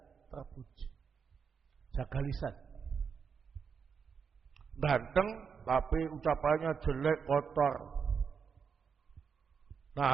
terpuji. Jaga lisan. Ganteng tapi ucapannya jelek, kotor.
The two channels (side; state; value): left; quieter; 6.3 dB